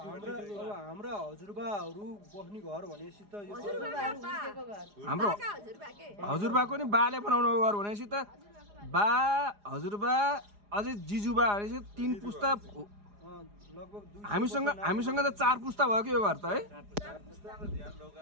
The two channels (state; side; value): late; left; 4.9 ms